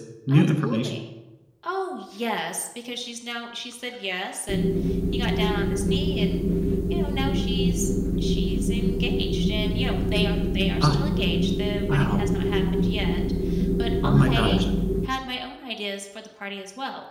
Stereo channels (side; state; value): both; identical; correlation 1.00